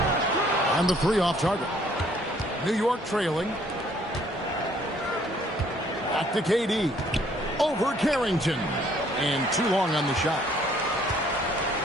And the three off target. New York trailing. Back to KD. Over Carrington. And too long on the shot.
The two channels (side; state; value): both; normal; correlation 0.62